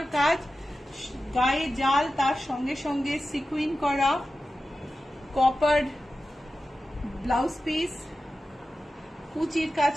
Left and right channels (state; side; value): normal; both; correlation 0.93